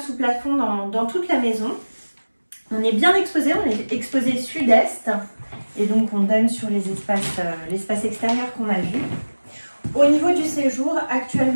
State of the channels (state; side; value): inverted; both; correlation -1.00